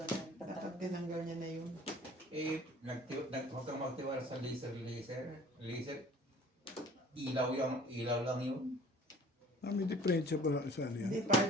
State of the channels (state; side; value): normal; both; correlation 0.49